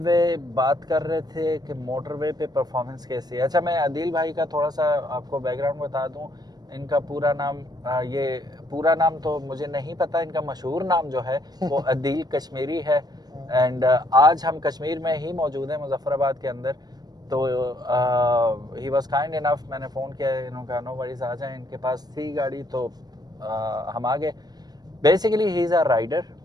बात कर रहे थे कि मोटरवे पे परफॉर्मेंस कैसी है। अच्छा, मैं अदील भाई का थोड़ा सा आपको बैकग्राउंड बता दूं। इनका पूरा नाम ये पूरा नाम तो मुझे नहीं पता, इनका मशहूर नाम जो है वो अदील कश्मीरी है। एंड आज हम कश्मीर में ही मौजूद हैं, मुजफ्फराबाद के अंदर। तो ही वॉज काइंड इनफ, मैंने फ़ोन किया, इन्होंने कहा नो वरीज आ जाएं। इनके पास थी गाड़ी तो हम आ गए। Basically he is a rider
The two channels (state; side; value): late; left; 0.19 ms